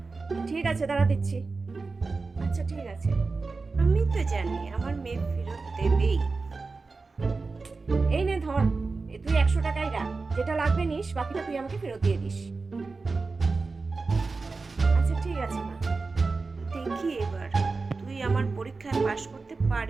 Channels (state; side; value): quieter; left; 4.0 dB